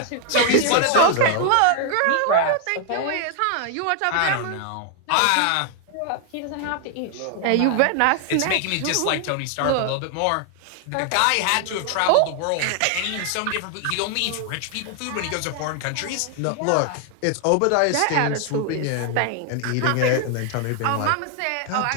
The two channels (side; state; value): both; different; correlation 0.00